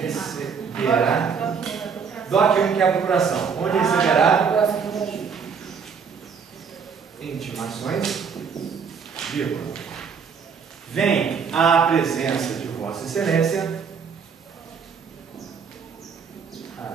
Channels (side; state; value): left; quieter; 6.2 dB